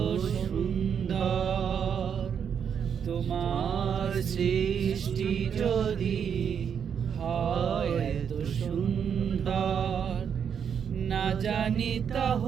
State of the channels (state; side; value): quieter; left; 7.6 dB